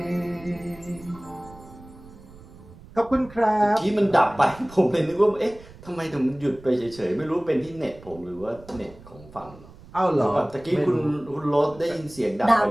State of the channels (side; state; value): right; noise; rumble, 20 dB below the sound